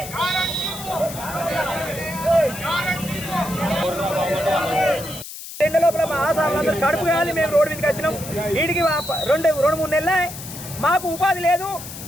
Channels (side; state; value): left; noise; hiss, 11 dB below the sound